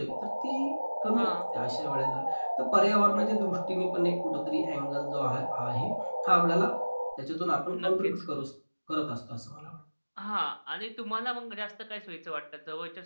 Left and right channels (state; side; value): inverted; both; correlation -1.00